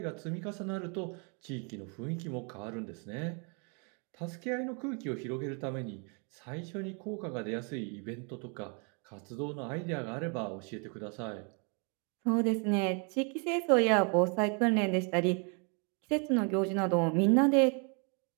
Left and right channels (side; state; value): left; quieter; 37.0 dB